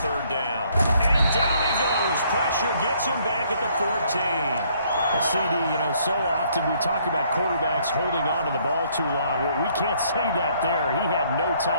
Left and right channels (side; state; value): both; inverted; correlation -0.65